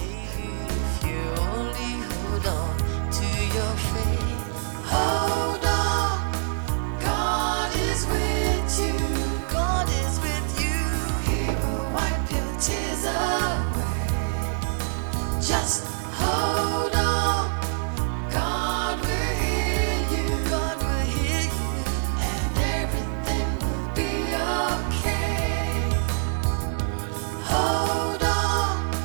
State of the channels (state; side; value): silent; left; digital silence